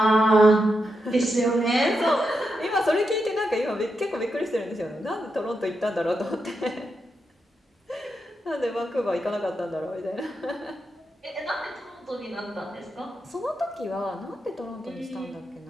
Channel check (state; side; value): normal; both; correlation 0.85